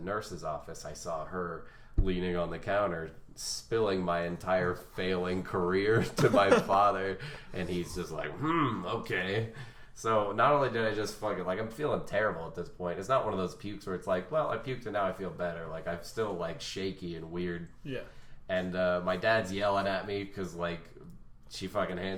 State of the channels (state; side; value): identical; both; correlation 1.00